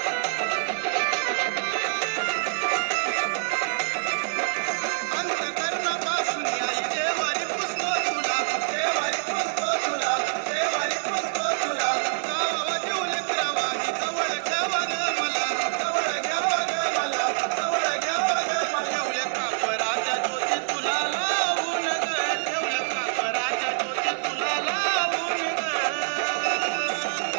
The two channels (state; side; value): silent; left; digital silence